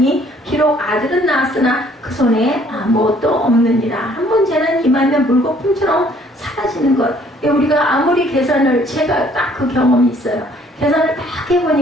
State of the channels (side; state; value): both; normal; correlation 0.61